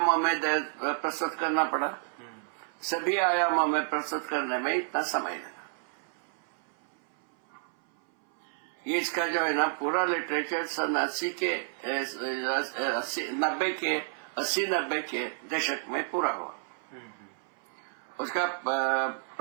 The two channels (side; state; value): left; silent; 58 dB below the other